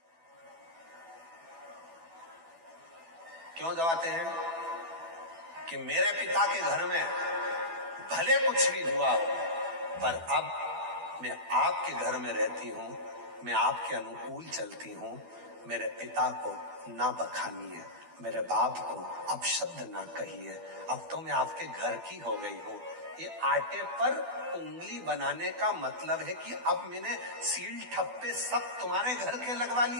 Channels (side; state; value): left; late; 12 ms